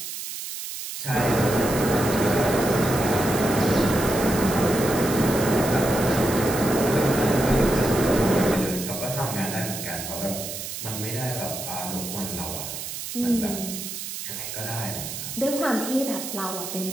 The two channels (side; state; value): right; noise; hiss, 7 dB below the sound